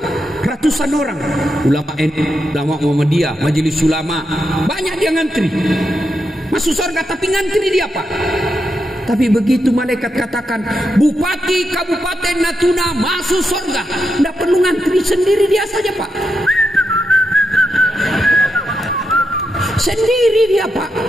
Ratusan orang. Ulama NU, ulama Muhammadiyah, majelis ulama, banyak dia ngantri. Masuk surga tapi ngantri dia Pak. Tapi begitu malaikat katakan Bupati Kabupaten Natuna masuk surga, tidak perlu ngantri, sendiri dia saja Pak. Sendiri dia Pak.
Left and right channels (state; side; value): normal; both; correlation 0.84